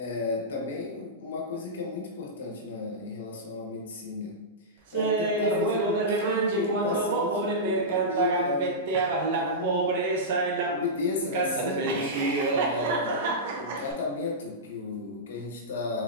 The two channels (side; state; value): both; normal; correlation -0.14